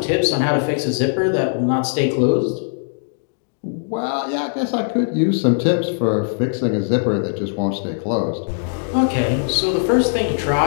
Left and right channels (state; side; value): silent; right; digital silence